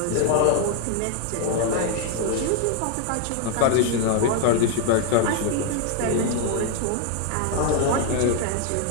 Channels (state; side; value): different; both; correlation 0.00